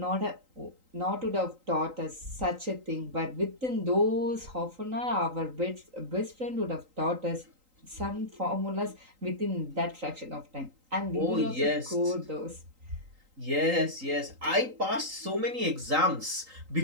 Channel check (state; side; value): late; left; 3.8 ms